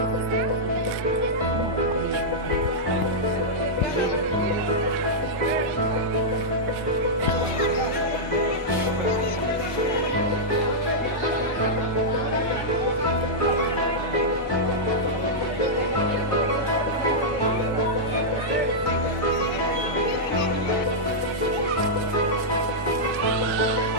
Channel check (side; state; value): both; normal; correlation -0.08